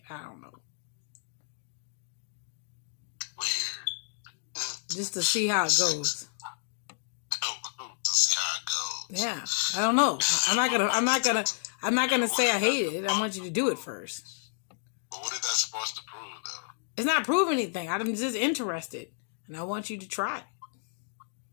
I don't know. Weird. Just to see how it goes. To see how it goes. Yeah, I don't know. I'm not gonna say I hate it. I want you to do it first. But what is that supposed to prove, though? It's not proving anything. I'm just interested, and I want you to try it.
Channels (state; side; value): silent; right; digital silence